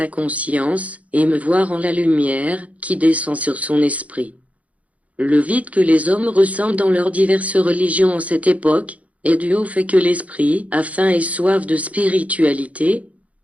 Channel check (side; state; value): left; late; 0.068 ms